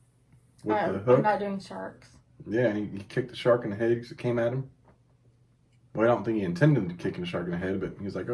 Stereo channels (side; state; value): both; identical; correlation 1.00